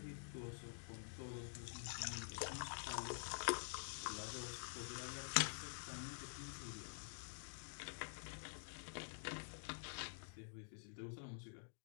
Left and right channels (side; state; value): right; silent; digital silence